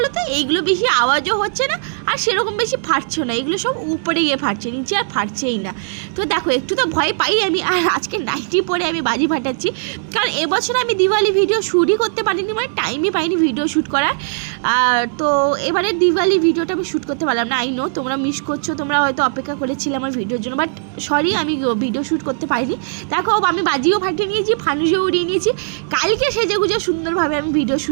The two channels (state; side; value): silent; left; digital silence